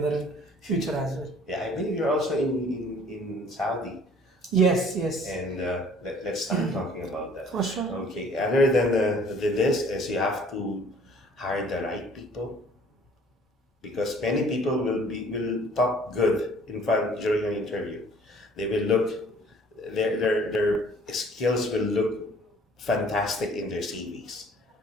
in future as well. Yeah, I believe you're also in Saudi. Yes, yes, And let's start talking about that. for sure. Okay, other than this is you have to hire the right people, because many people will talk good in front during an interview. They will look their skills will look fantastic in their CVs.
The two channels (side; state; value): both; normal; correlation 0.54